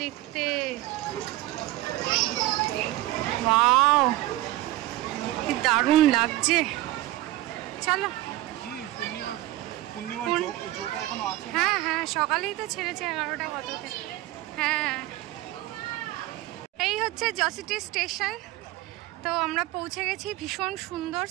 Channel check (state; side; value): quieter; left; 16.5 dB